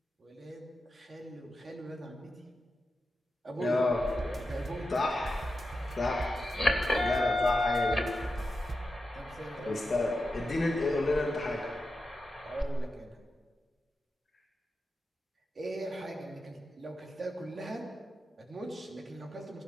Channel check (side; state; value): both; normal; correlation 0.89